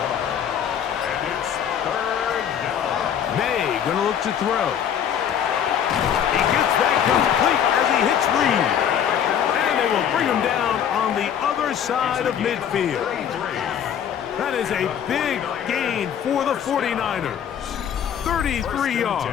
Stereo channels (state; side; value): quieter; right; 8.9 dB